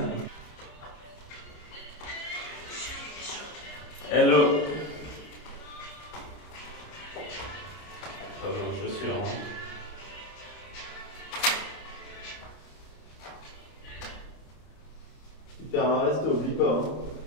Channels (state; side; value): late; right; 33 ms